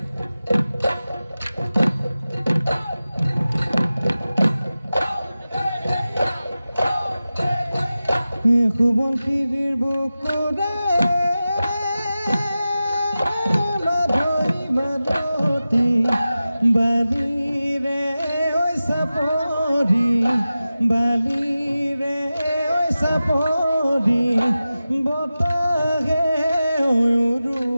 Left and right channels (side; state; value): both; inverted; correlation -0.94